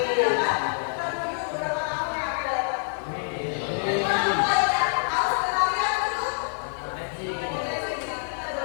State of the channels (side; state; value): right; silent; 61 dB below the other